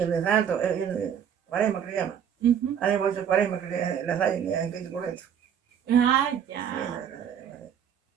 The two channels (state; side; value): quieter; left; 8.5 dB